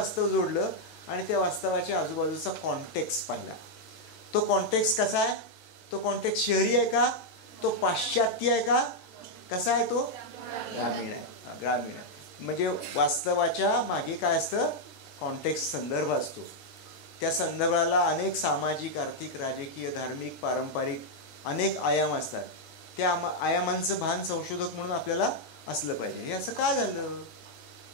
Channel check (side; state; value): right; late; 13 ms